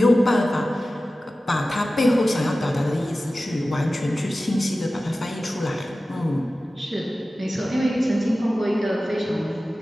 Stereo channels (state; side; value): normal; both; correlation 0.95